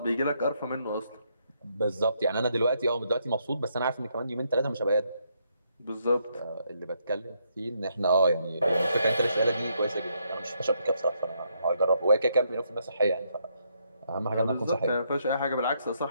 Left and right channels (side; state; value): both; inverted; correlation -0.75